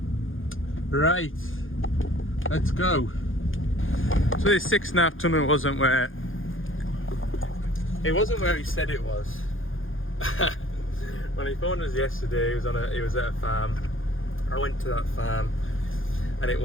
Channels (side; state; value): right; late; 0.59 ms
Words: Right, let's go. So this 6.5 tonner wasn't where he said it was. When he phoned us yesterday, he was at a farm. I went to that farm and it